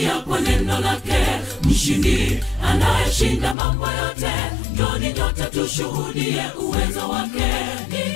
kwa neno lake. Mshindi anayeshinda mambo yote, njoni nyote tushuhudie uwezo wake.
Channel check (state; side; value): drops out; right; at 3.6 s